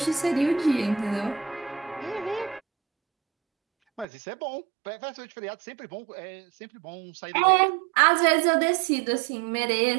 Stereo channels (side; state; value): left; drops out; at 4.0 s